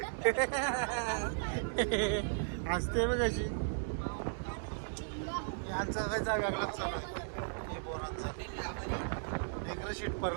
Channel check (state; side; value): silent; left; digital silence